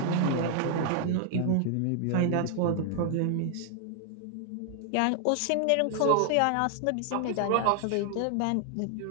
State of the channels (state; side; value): different; both; correlation 0.00